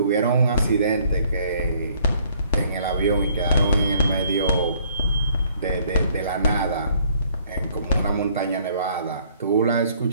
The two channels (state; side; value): inverted; both; correlation -0.62